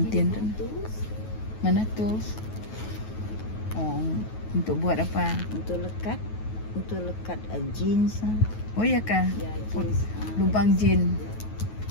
tu? Mana tools? Oh, untuk buat apa? Untuk lekat jeans. Oh ya kah? Ya, jeans. Lubang jean.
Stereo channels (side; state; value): right; late; 9.3 ms